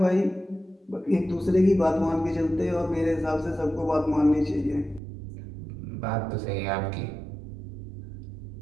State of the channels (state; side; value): drops out; left; at 5.0 s